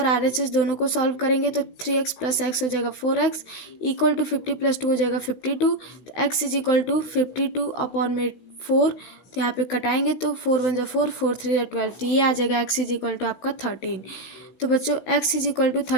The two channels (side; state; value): right; late; 16 ms